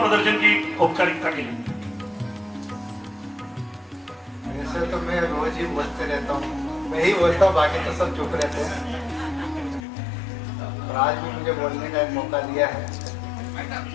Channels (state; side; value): drops out; right; at 9.8 s